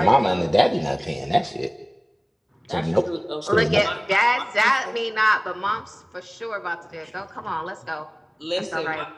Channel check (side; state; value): both; identical; correlation 1.00